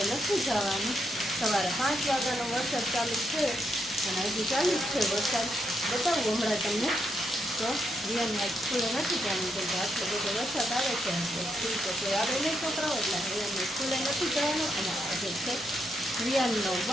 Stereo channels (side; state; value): both; normal; correlation 0.80